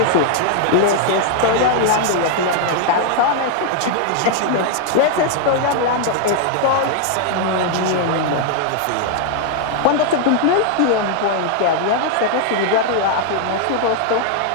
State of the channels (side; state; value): both; different; correlation 0.00